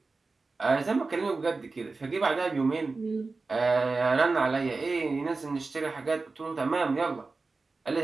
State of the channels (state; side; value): quieter; left; 3.8 dB